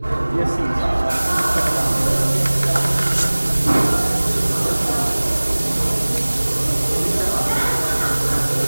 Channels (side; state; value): both; inverted; correlation -1.00